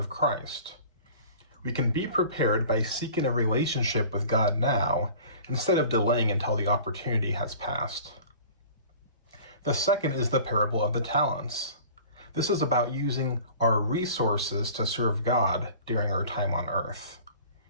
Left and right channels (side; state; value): both; inverted; correlation -0.44